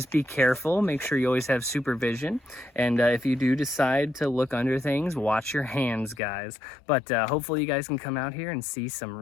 be careful. Make sure you always have supervision. And if you do decide to look under things, watch your hands, guys. But hopefully you guys can come out here and see some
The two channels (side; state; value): right; drops out; at 6.2 s